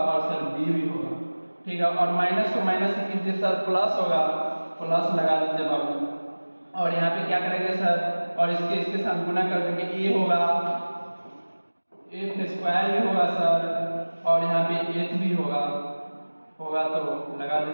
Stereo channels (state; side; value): inverted; both; correlation -1.00